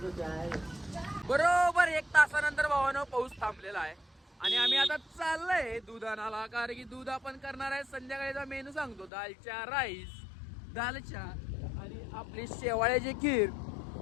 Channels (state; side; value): drops out; right; at 9.1 s